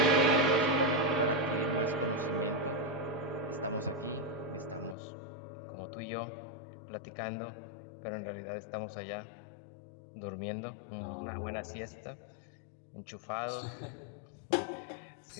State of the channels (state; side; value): drops out; right; at 5.0 s